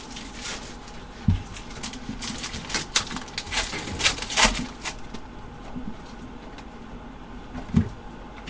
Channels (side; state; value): both; identical; correlation 1.00